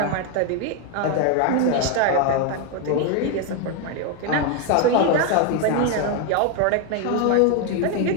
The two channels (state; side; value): different; both; correlation 0.01